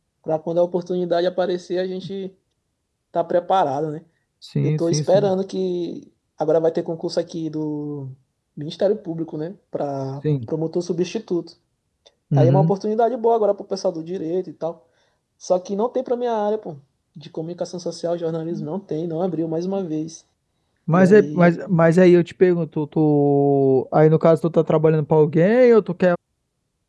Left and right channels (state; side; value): identical; both; correlation 1.00